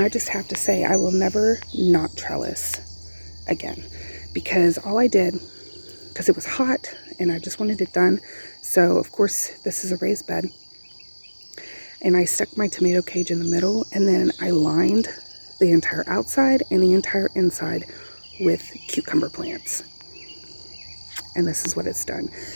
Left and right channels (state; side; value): inverted; both; correlation -1.00